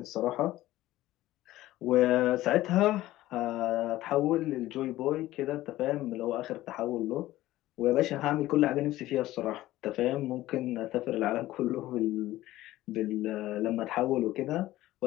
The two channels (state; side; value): quieter; right; 15.9 dB